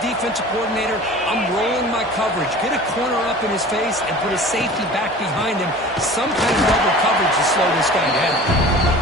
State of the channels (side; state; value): both; normal; correlation 0.41